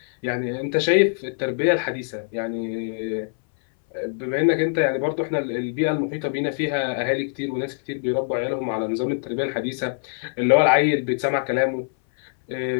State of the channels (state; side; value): silent; right; 61 dB below the other